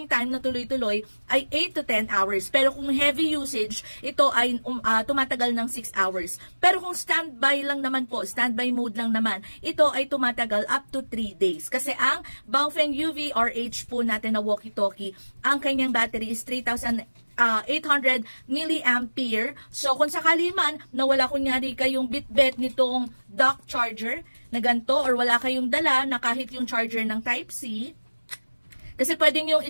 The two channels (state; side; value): inverted; both; correlation -1.00